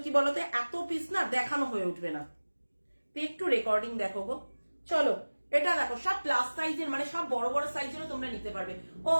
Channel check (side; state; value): both; inverted; correlation -1.00